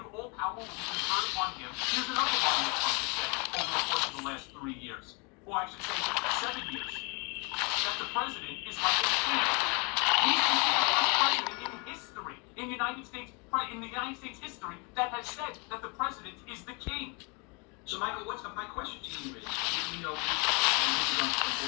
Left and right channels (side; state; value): right; quieter; 31.9 dB